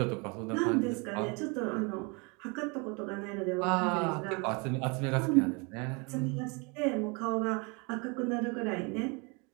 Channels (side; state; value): left; quieter; 30.9 dB